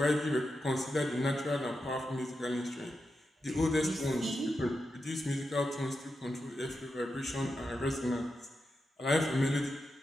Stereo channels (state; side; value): normal; both; correlation 0.88